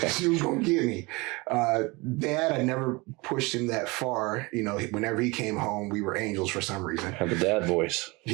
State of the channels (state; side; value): quieter; left; 25.2 dB